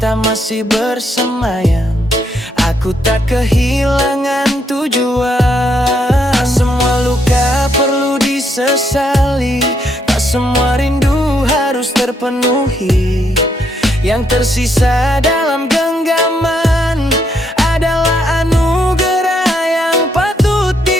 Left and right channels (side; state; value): both; normal; correlation 0.75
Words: masih bersemayam, aku tak kehilangan tujuan. Tak semua luka perlu disesali, tak semua rindu harus terpenuhi. Yang tersisa dalam genggaman adalah anugerah yang patut